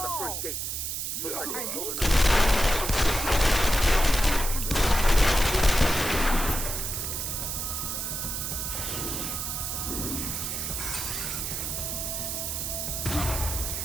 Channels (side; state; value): right; noise; hiss, 3 dB below the sound